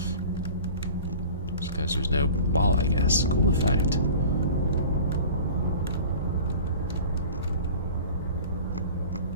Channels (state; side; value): inverted; both; correlation -0.41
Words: Just because there's no ball, I guess. Cool effect.